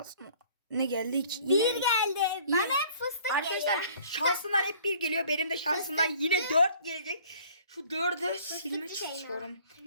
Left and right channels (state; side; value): inverted; both; correlation -0.54